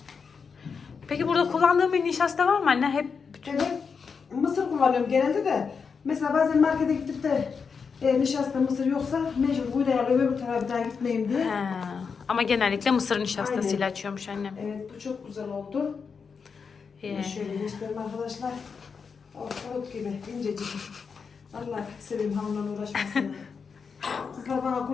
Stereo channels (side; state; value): right; quieter; 5.7 dB